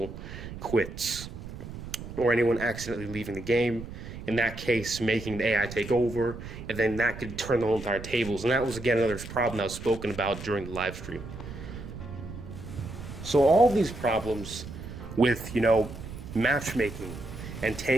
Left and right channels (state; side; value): noise; right; rumble, 11 dB below the sound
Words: quits or anyone accidentally leaving the game. In that case, making the AI take over, and then that could turn the whole entire tables. And that was, again, another problem that was spoken about during the live stream. So all these problems with, matchmaking and